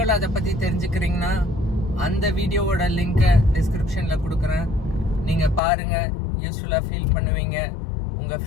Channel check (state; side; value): drops out; right; at 5.6 s